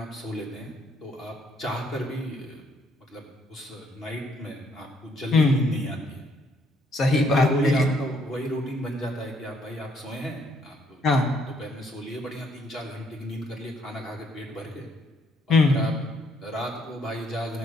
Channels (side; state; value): both; normal; correlation 0.69